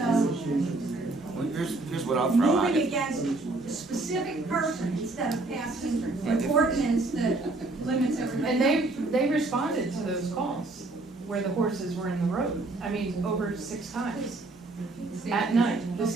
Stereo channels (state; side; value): quieter; left; 3.1 dB